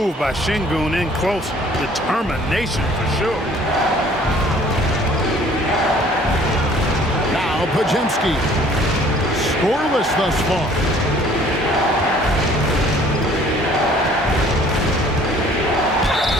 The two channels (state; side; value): normal; both; correlation 0.55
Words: by Şengün in close. Determination for sure. Now Pajemski. Scoreless thus far.